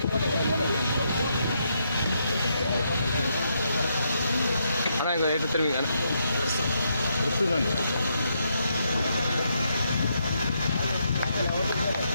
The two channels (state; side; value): inverted; both; correlation -0.78